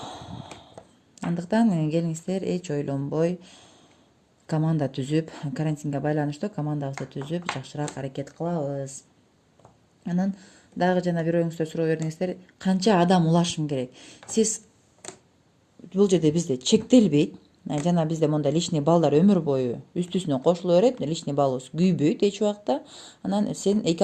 Андыктан келиңиздер, эч ойлонбой команда түзүп, карантинге байланыштуу командабызды түзүп, жакшыраак аракет кылабыз. Анан дагы жана бир оюңуздар суроо бердиңиздер, канча адам улашым керек? Сиз бул жерде бизде чектелбейт. Жана бизде мондай личный балдар өмүр бою үстүсүнө кошуло берет, личный балыбыз күйбөйт эч убакта. Анан сен 2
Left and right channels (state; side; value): identical; both; correlation 1.00